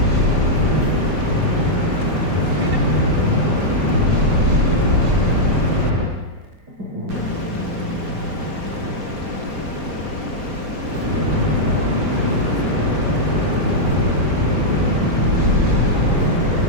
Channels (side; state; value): left; late; 4.9 ms